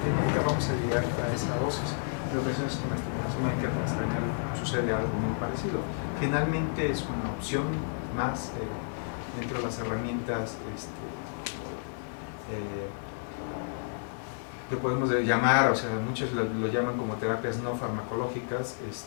nunca vamos a llegar a esa dosis. En ocasiones con la estimulación mecánica transcranial sucede algo muy parecido. Finalmente es una opción más dentro de las herramientas que podemos llamar, o sea, muchos lo llaman como terapias no farmacológicas.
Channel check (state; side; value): silent; right; 57 dB below the other